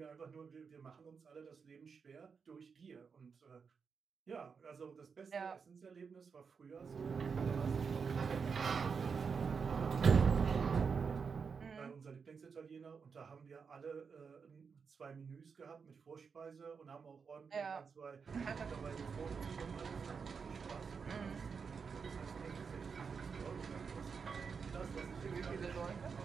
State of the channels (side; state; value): left; quieter; 5.8 dB